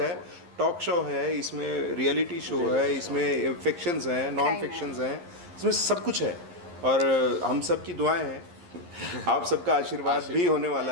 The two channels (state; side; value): late; left; 11 ms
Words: टॉक शो है, इसमें रियलिटी शो है, इसमें फिक्शंस हैं, नॉन फिक्शंस हैं, इसमें सब कुछ है। और हम सब की दुआएं हैं, आप सबका आशीर्वाद भी होने